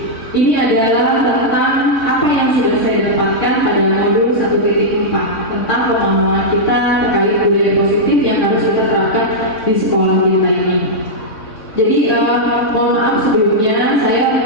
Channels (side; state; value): right; late; 3.6 ms